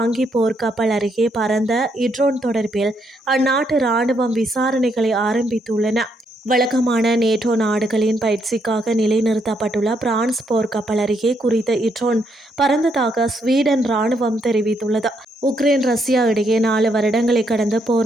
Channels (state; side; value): normal; both; correlation 0.76